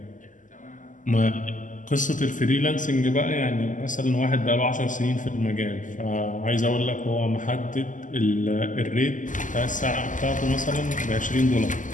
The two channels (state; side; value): late; right; 0.37 ms